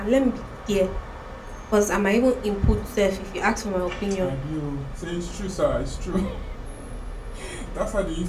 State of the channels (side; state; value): both; identical; correlation 1.00